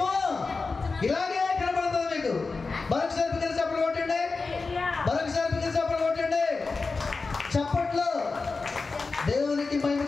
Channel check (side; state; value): right; quieter; 4.1 dB